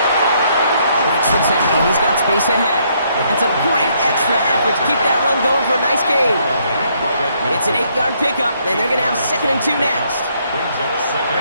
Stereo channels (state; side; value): inverted; both; correlation -0.70